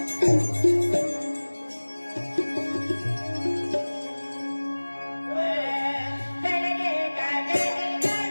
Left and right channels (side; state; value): both; inverted; correlation -1.00